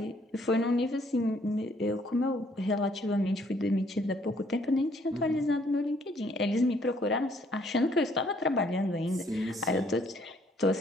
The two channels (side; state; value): both; normal; correlation 0.65